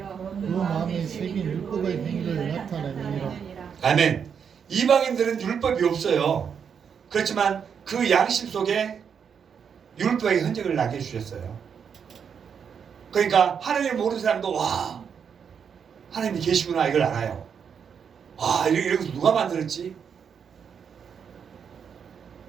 그 마음에 새긴 율법의 행위를 나타내느니라. 아멘. 이방인들은 율법이 없어요. 그렇지만 그 양심 속에 율법의 흔적을 나게 해주셨어요. 그러니까 하나님을 모르는 사람도 와 하나님이 계시구나 이걸 알아요. 와 이런 거 누가 만들었지?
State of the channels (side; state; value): left; quieter; 7.1 dB